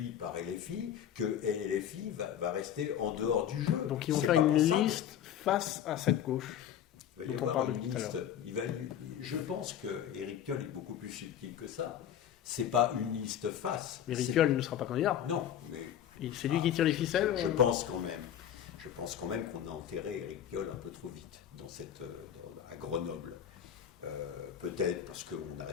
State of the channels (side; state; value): right; quieter; 9.9 dB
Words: par LFI, que LFI va rester en dehors du jeu. Donc ils vont faire une liste face à cette gauche. Il va y avoir une liste. Je pense que Éric Piolle est beaucoup plus subtil que ça. C'est pas une liste face. Éric Piolle ne sera pas candidat. Non, mais c'est lui qui tire les ficelles. Je pense quand même qu'on a enterré Éric Piolle un peu trop vite à Grenoble. Peut-être parce qu'on